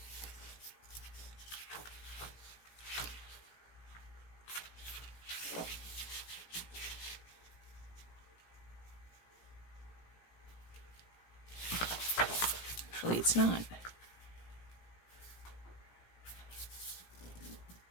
Actually, it's not.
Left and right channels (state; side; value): late; right; 17 ms